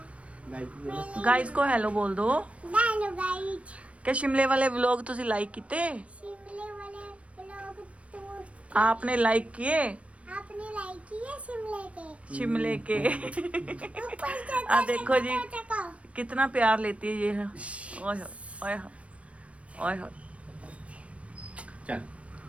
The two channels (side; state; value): left; late; 0.063 ms